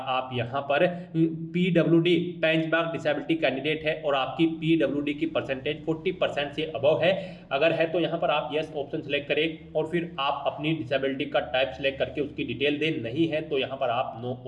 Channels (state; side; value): identical; both; correlation 1.00